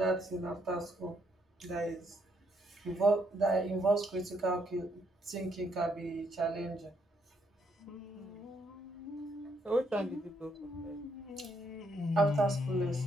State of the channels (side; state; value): both; normal; correlation 0.73